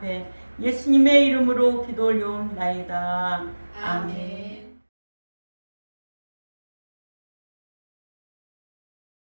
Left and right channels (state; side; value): inverted; both; correlation -1.00